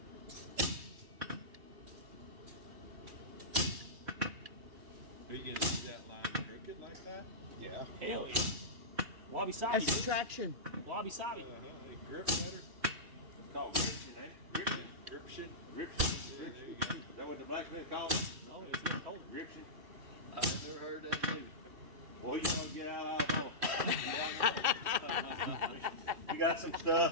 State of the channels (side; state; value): left; late; 2.7 ms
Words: Are you gonna do that line crooked like that? Yeah. Hell yeah. Wabi sabi. That's bitch. traction. Wabi sabi. Grip better? It's called gription, ain't it? Gription. Grip shit? Gription. Yeah, there you Is go. that what the blacksmith calls it? No, it's not cold. Gription. I've never heard that either. Well, you want to get out of home. You got some